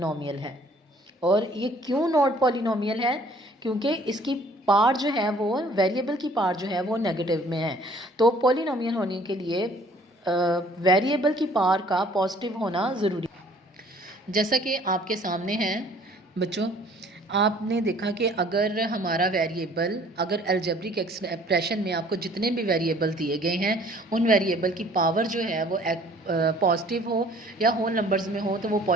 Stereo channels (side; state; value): both; normal; correlation 0.55